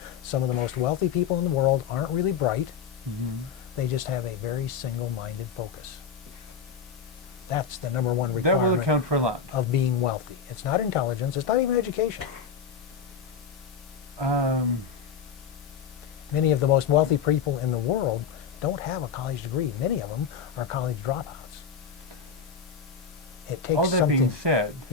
Some of the most wealthy people in the world aren't really bright. They just have a very single-minded focus. That's the number one requirement. That will account for a lot. Of being wealthy. It's not intelligence, it's not even education. Many of the most wealthy people in the world don't have a college degree. Many of them are college dropouts. It takes all that something. being said,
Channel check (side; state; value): right; quieter; 6.3 dB